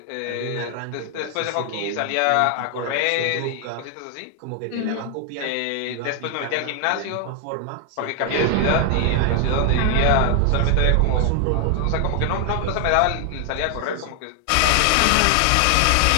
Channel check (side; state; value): both; different; correlation 0.00